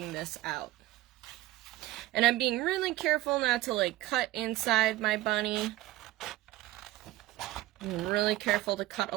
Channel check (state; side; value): quieter; left; 16.8 dB